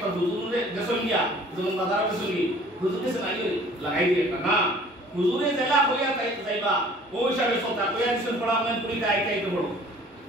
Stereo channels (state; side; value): normal; both; correlation 0.52